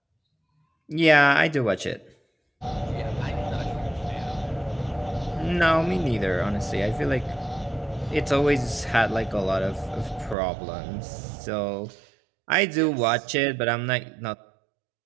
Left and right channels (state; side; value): drops out; left; at 10.4 s